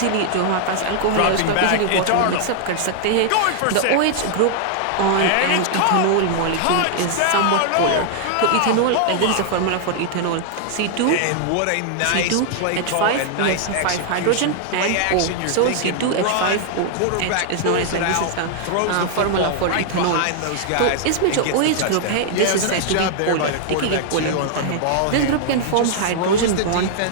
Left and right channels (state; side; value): different; both; correlation 0.00